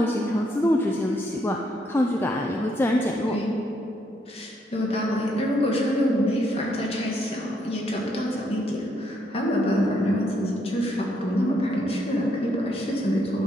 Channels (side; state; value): both; normal; correlation 0.74